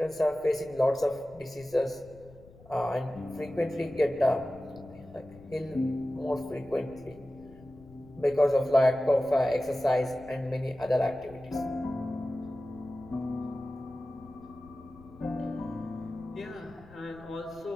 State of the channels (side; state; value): left; noise; rumble, 22 dB below the sound